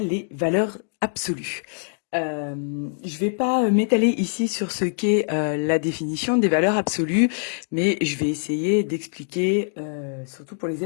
les valeurs absolues. Je vais pas m'étaler ici sur ce qu'est la définition des valeurs absolues, mais je vais essayer d'expliquer, surtout pour les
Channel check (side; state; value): right; silent; digital silence